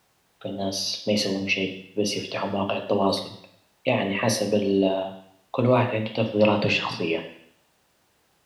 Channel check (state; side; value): identical; both; correlation 1.00